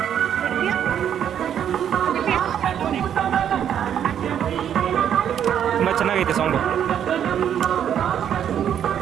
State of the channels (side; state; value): left; quieter; 9.3 dB